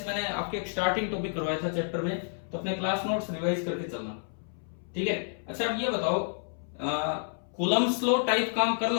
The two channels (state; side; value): silent; right; 58 dB below the other